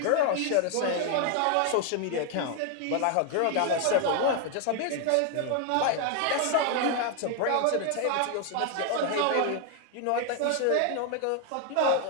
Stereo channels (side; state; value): both; different; correlation 0.00